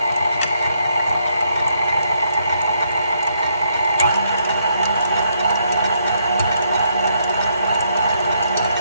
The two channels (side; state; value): both; inverted; correlation -0.74